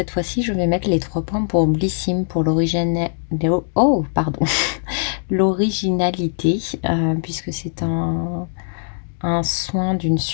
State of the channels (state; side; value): silent; right; 65 dB below the other